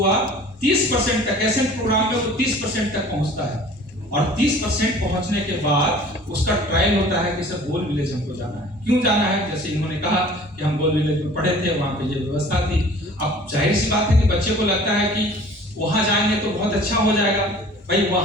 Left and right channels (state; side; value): normal; both; correlation 0.48